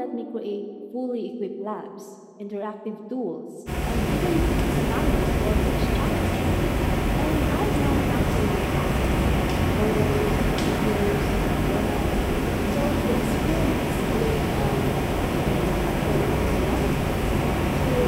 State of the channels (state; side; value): identical; both; correlation 1.00